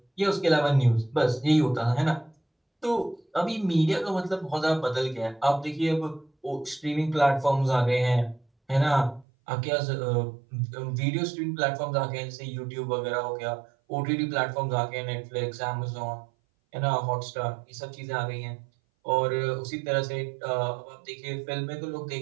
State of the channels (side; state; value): left; drops out; at 9.2 s